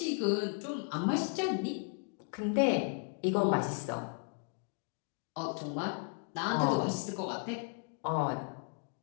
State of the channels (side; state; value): right; quieter; 38.7 dB